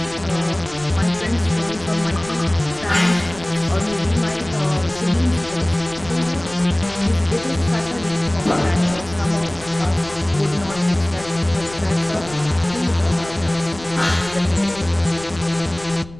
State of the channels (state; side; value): noise; left; rumble, 18 dB below the sound